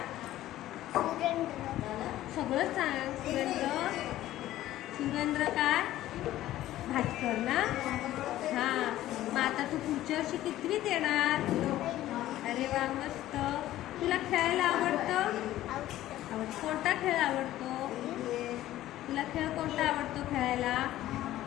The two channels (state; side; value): quieter; right; 14.3 dB